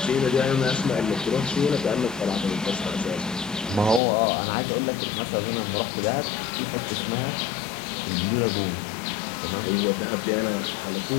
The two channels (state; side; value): drops out; right; at 4.0 s